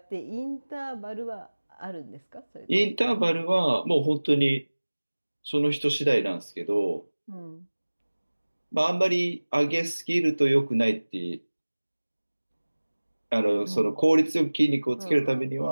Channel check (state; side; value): inverted; both; correlation -1.00